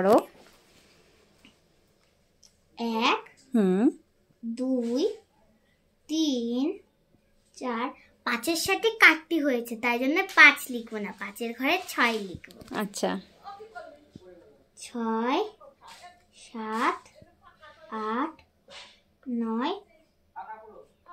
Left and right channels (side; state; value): both; identical; correlation 1.00